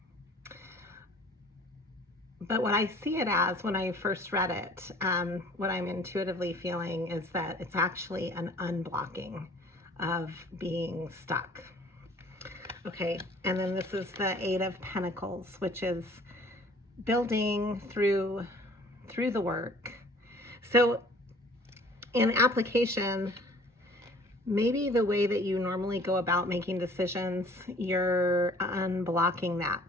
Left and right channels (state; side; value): normal; both; correlation 0.52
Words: But what I see it as when I first read it, what I'm intuitively feeling is that it's actually an unblocking of being stuck. Okay, and then this is the 8 of Pentacles, which is building through the work. So in application, maybe the way that you normally go about making decisions, you're unblocking that